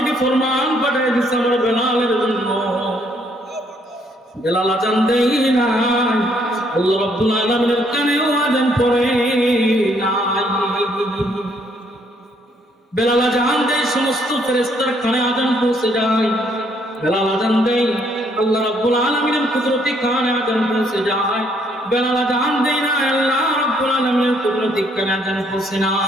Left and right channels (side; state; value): both; normal; correlation 0.68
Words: ফরমান পাঠিয়ে দিয়েছে আমার বেলালের জন্য। বেলাল আযান দেয় না, আল্লাহ রাব্বুল আলামিনের কানেও আযান পড়ে নাই। বেলাল আযান দেয়, সমস্ত ফেরেশতার কানে আযান পৌঁছে যায়। বেলাল আযান দেয়, আল্লাহ রাব্বুল আলামিনের কুদরতি কানে আযান পৌঁছে যায়। বেলাল আযান দেয় না, আল্লাহ রাব্বুল আলামিনের কুদরতি কানে আযান পৌঁছে